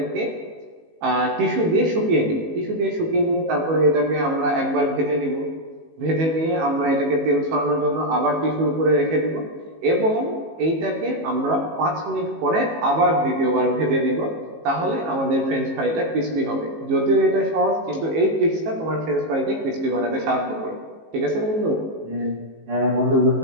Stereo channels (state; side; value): late; left; 18 ms